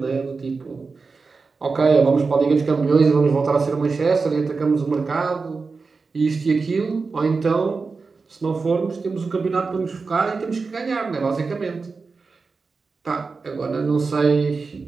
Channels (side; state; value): left; quieter; 4.4 dB